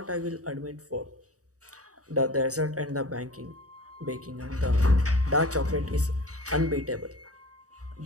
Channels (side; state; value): left; late; 0.66 ms